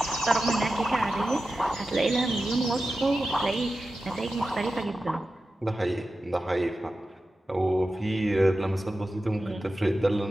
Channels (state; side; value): normal; both; correlation 0.93